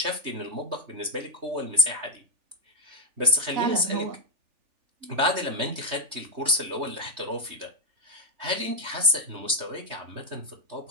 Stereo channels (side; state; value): left; late; 3.2 ms